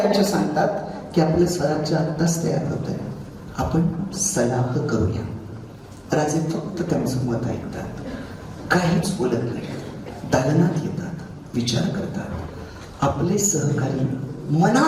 सांगतात की आपलं स्वराज्य आत्ताच तयार होत आहे, आपण सलाह करूया. राजे फक्त त्यांचं मत ऐकतात, काहीच बोलत नाही. दालनात येतात, विचार करतात. आपले सहकारी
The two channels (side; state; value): both; identical; correlation 1.00